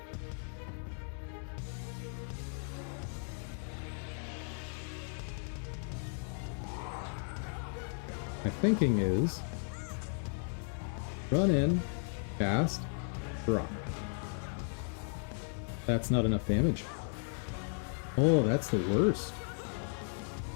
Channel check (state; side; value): silent; right; 54 dB below the other